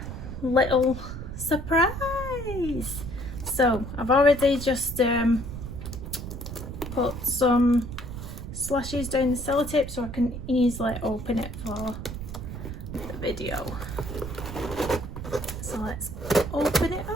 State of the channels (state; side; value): noise; right; rumble, 8 dB below the sound